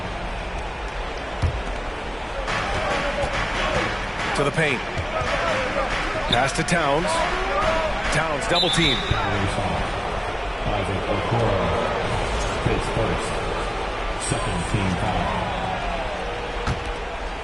To the paint. Pass to Towns. Towns double team. Isaac Okoro. His first. Second team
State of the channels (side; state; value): both; identical; correlation 1.00